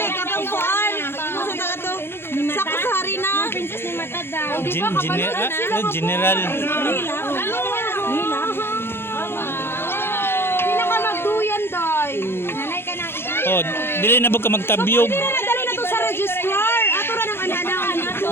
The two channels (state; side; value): late; right; 0.11 ms